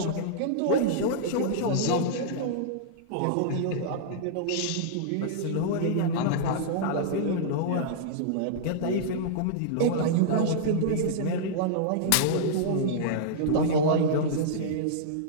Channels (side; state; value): both; different; correlation -0.02